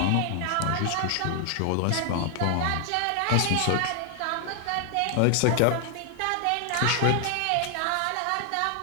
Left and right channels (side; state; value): both; different; correlation 0.00